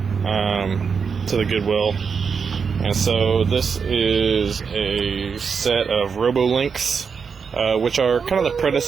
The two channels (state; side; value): quieter; left; 5.9 dB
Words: the Goodwill. And so this is a set of Robolinks, which are kind of the